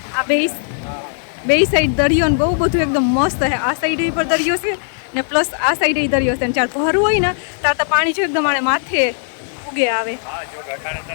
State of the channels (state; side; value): silent; right; 56 dB below the other